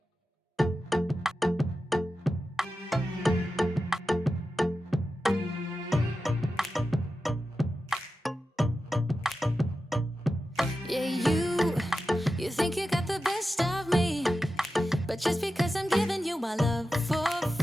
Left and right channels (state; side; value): normal; both; correlation 0.92